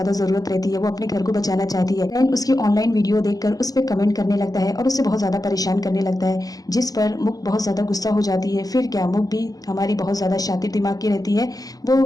ज़रूरत रहती है। वो अपने घर को बचाना चाहती है। लैन उसकी ऑनलाइन वीडियो देखकर उस पर कमेंट करने लगता है और उससे बहुत ज़्यादा परेशान करने लगता है, जिस पर मुख बहुत ज़्यादा गुस्सा हो जाती है। फिर क्या, मुख भी हमारी बहुत ज़्यादा शातिर दिमाग की रहती है।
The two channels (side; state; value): right; late; 0.18 ms